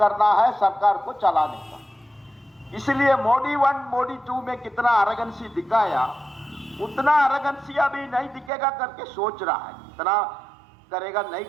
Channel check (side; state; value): left; drops out; at 8.5 s